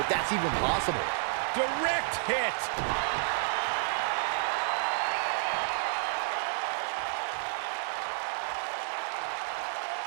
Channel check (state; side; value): silent; left; 57 dB below the other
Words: if that's even possible. Direct hit.